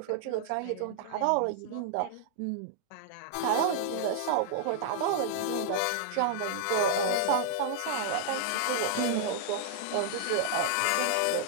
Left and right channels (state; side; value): different; both; correlation -0.01